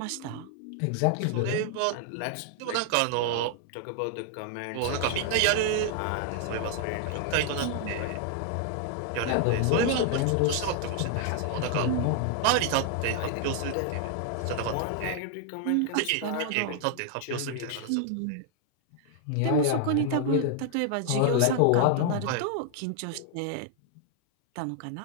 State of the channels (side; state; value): both; different; correlation 0.00